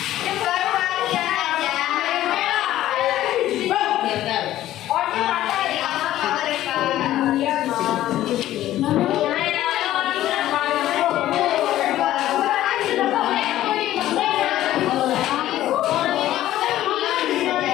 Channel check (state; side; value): quieter; right; 13.7 dB